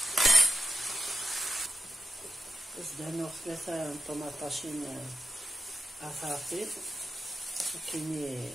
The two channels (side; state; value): both; normal; correlation 0.87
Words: زدانو ثلاثة طماطاشين أفاطي كيني